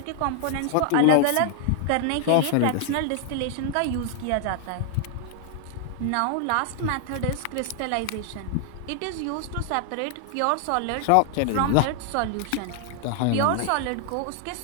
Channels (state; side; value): different; both; correlation 0.00